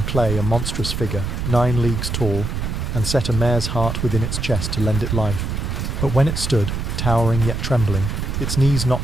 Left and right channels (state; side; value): noise; right; rumble, 3 dB below the sound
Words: clay a monstrous figure, 9 leagues tall, and set a mare's heart within its chest to lend it life. But when it stood, towering yet trembling, its knees